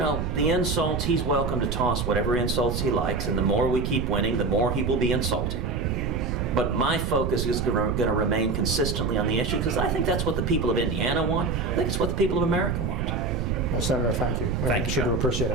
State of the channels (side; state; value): right; noise; rumble, 1 dB below the sound